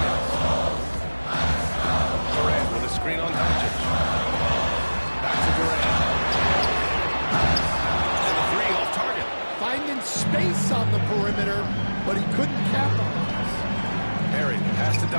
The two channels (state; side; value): inverted; both; correlation -1.00